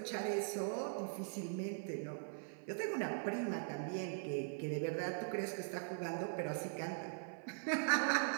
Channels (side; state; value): left; silent; 50 dB below the other